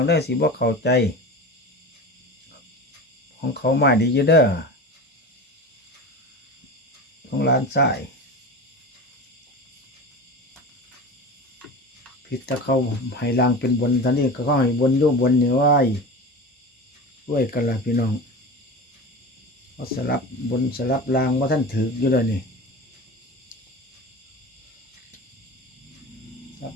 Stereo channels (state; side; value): normal; both; correlation 0.30